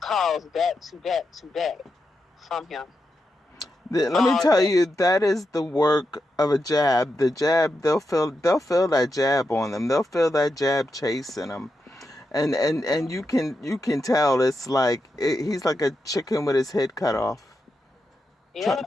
calls back to back to back from him Let me all tell day. you, that is the work of a jab. The jab, they'll feel that jab on them. They'll feel that jab chasing them, and you can tell it's like he's like a chicken with his head cut off,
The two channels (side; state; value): both; normal; correlation 0.87